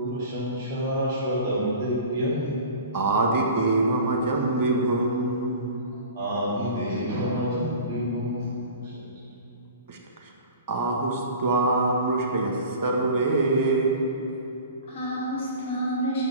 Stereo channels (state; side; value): inverted; both; correlation -0.39